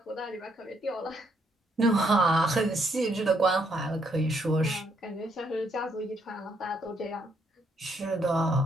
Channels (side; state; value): both; normal; correlation 0.73